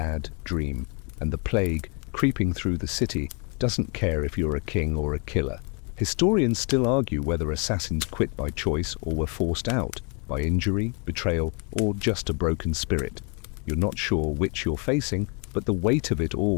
dream, and the plague, creeping through the city, doesn't care if you're a king or a killer. Historians still argue whether assassins quit by choice or were forced out, by injury, betrayal, or just a broken spirit. You're not sure which you're facing, but the weight of it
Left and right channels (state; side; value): quieter; right; 34.6 dB